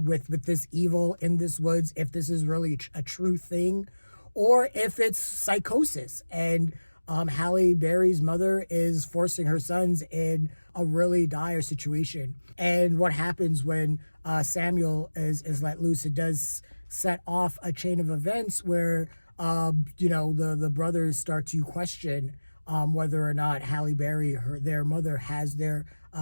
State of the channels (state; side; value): inverted; both; correlation -1.00